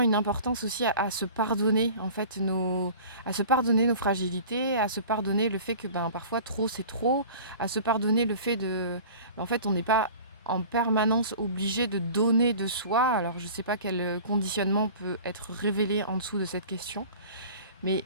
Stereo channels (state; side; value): inverted; both; correlation -0.42